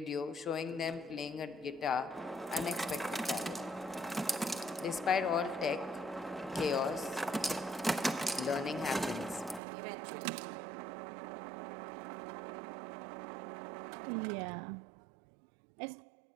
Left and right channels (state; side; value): drops out; left; at 9.6 s